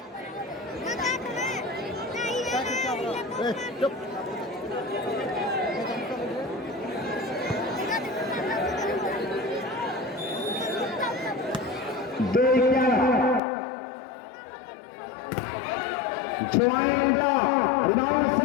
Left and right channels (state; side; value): drops out; right; at 13.4 s